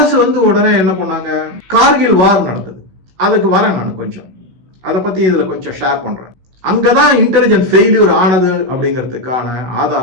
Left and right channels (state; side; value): late; left; 16 ms